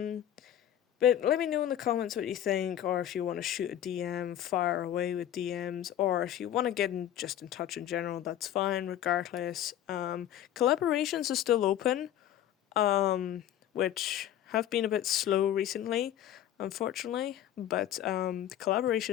let me know in the comments what you think, or if you want to shoot a DM, fire away with DMs, or if you want to get in touch in general, that's fine regardless. Collaborations are still open, which have been a bit slow recently, unfortunately, but the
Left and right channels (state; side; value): quieter; right; 11.3 dB